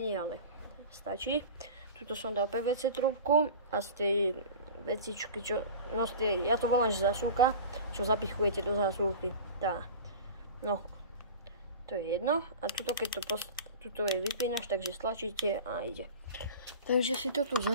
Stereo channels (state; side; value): inverted; both; correlation -0.35